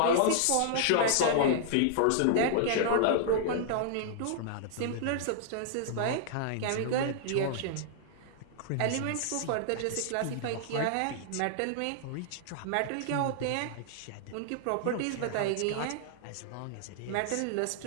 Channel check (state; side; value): different; both; correlation -0.01